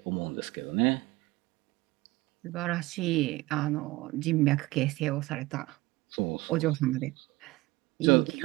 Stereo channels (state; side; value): quieter; left; 20.4 dB